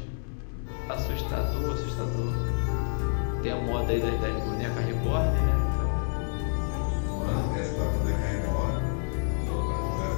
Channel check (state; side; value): silent; right; digital silence